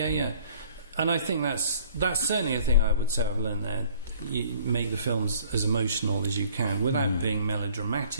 I think that's certainly a thing I would say I've learned there. You make the films as emotional as you can without being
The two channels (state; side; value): inverted; both; correlation -0.55